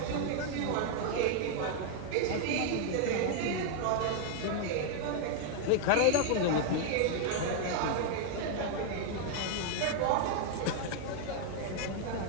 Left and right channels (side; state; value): both; different; correlation 0.00